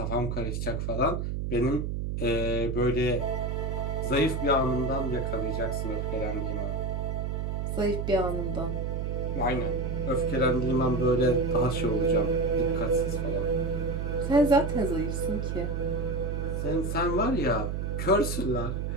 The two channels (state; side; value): noise; right; hum, 2 dB below the sound